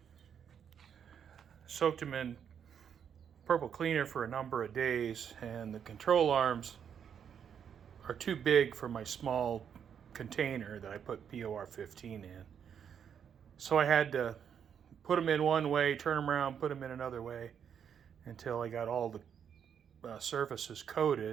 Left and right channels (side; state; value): left; quieter; 8.0 dB